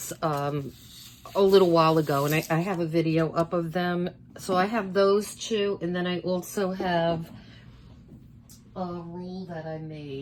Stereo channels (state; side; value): identical; both; correlation 1.00